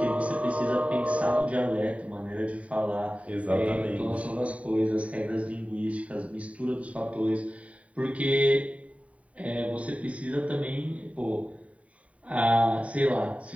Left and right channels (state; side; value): late; left; 0.066 ms